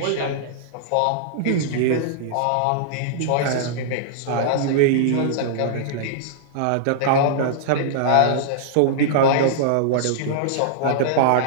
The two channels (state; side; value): different; both; correlation -0.02